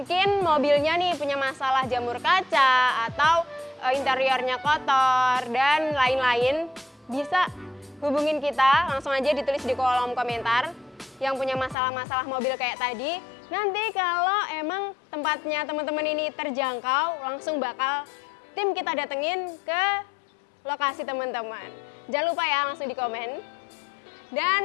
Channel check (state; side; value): drops out; right; at 11.8 s